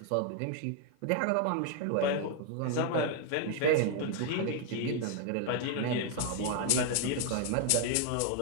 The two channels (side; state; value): both; different; correlation 0.00